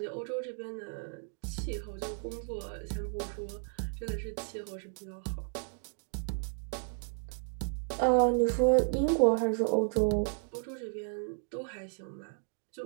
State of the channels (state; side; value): silent; left; 55 dB below the other